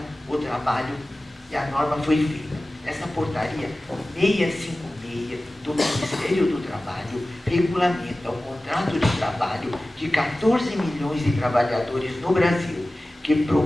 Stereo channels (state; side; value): normal; both; correlation 0.96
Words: o trabalho, e a norma foi feita. Essa portaria 656 do Ministério do Trabalho regulamenta o contrato de trabalho de 14 milhões de trabalhadores no Brasil, que